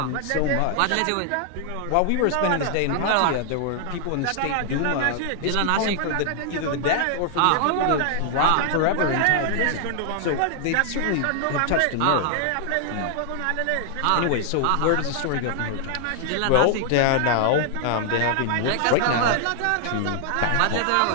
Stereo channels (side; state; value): both; different; correlation 0.00